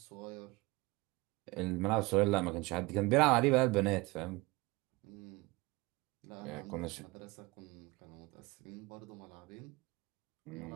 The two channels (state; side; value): quieter; left; 23.0 dB